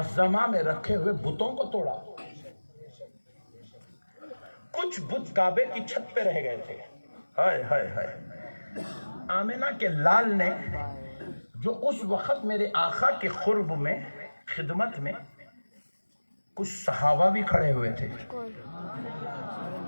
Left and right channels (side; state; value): both; inverted; correlation -1.00